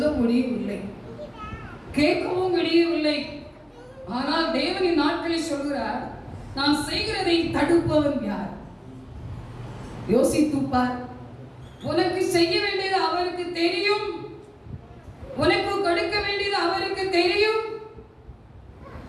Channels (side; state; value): both; identical; correlation 1.00